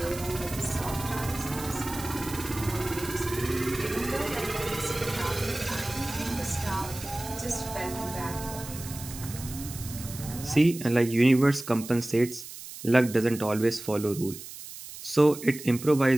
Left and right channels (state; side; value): noise; right; hiss, 12 dB below the sound